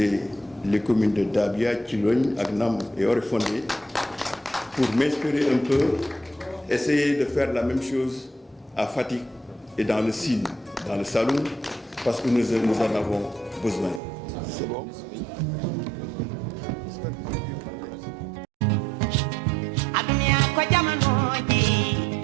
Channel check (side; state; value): left; drops out; at 14.0 s